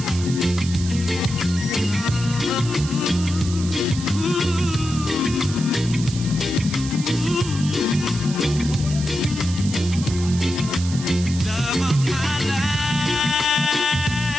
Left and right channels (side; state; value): right; noise; hiss, 11 dB below the sound